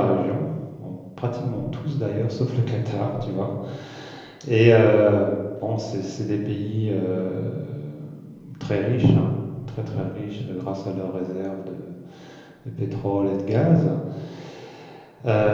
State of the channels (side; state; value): both; identical; correlation 1.00